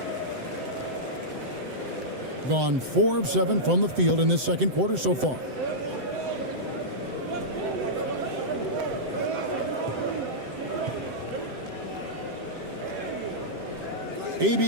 Gone 4 of 7 from the field in this second quarter so far.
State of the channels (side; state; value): left; late; 7.8 ms